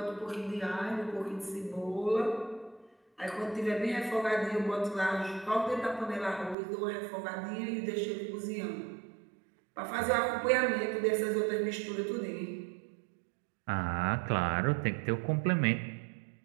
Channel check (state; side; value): drops out; left; at 6.6 s